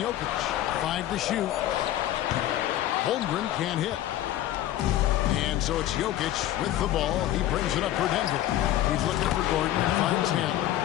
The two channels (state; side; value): quieter; right; 13.3 dB